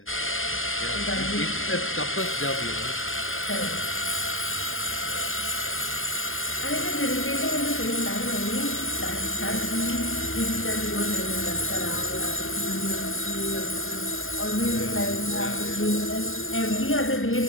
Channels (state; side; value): late; right; 0.59 ms